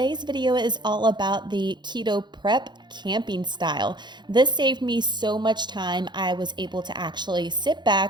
video is all about the keto prep camping style. This saved me so much time. I was able to actually sit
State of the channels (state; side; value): late; left; 0.21 ms